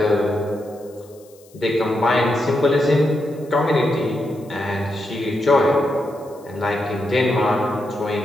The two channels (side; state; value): left; noise; hiss, 28 dB below the sound